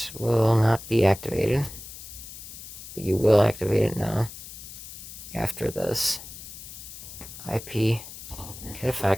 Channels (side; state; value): left; noise; hiss, 13 dB below the sound